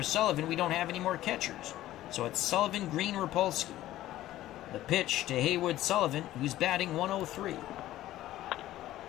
Sullivan. We don't have any more catchers. So it's Sullivan, Green, Rapolsky. The pitch to Haywood Sullivan, who's batting 103. And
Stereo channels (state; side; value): quieter; right; 14.6 dB